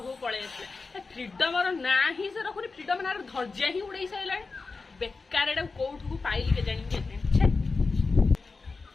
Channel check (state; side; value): quieter; right; 4.2 dB